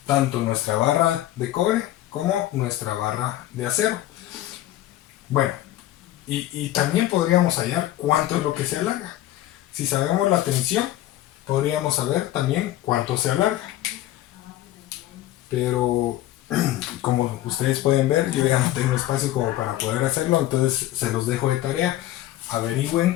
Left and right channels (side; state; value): right; quieter; 14.5 dB